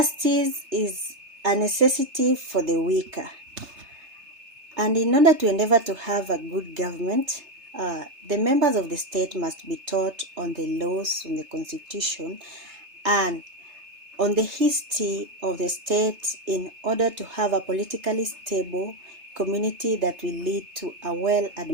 is a necessity for the weaker. And in order to endeavor to have a good government, the members of the state must be taught on the laws, on the constitution, and on the history of the state in order to have a politically stable community that will lead to a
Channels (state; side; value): late; left; 3.3 ms